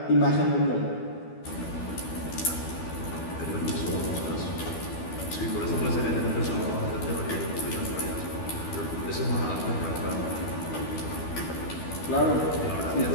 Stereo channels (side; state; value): right; late; 12 ms